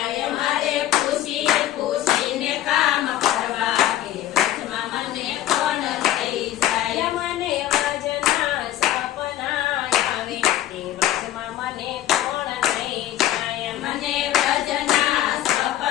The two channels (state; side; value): quieter; right; 13.3 dB